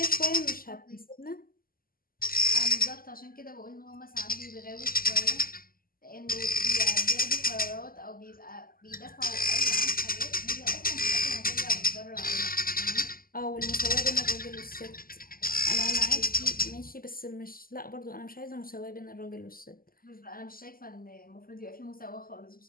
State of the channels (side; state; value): right; late; 0.42 ms